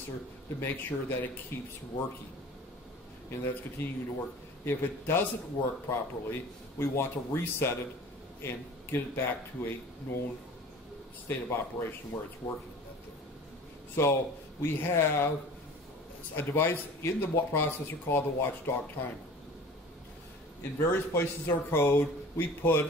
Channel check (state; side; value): normal; both; correlation 0.42